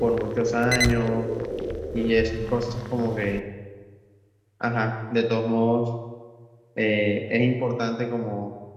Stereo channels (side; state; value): both; identical; correlation 1.00